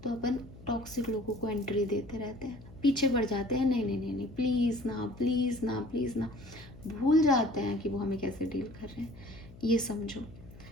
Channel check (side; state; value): left; noise; hum, 19 dB below the sound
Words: तो अपन टॉक्सिक लोगों को एंट्री देते रहते हैं, पीछे बढ़ जाते हैं, नहीं नहीं नहीं नहीं, प्लीज़ ना, प्लीज़ ना, प्लीज़ ना, भूल जाते हैं कि वो हमें कैसे डील कर रहे हैं। ये समझो।